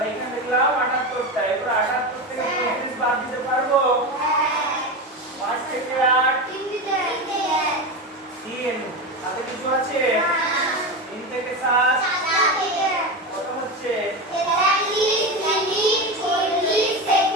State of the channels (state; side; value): normal; both; correlation 0.19